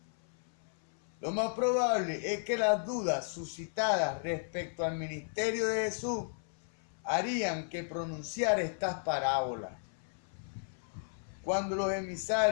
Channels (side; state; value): right; silent; 55 dB below the other